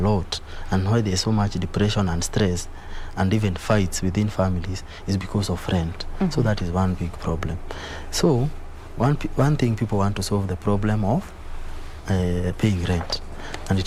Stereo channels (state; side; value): identical; both; correlation 1.00